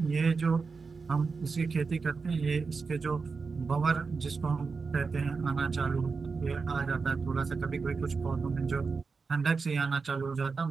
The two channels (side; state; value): left; quieter; 4.7 dB